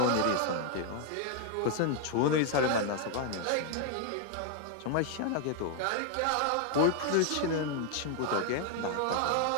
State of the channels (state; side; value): different; both; correlation 0.00